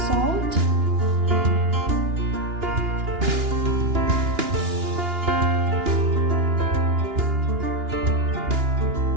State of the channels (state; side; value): late; left; 2.9 ms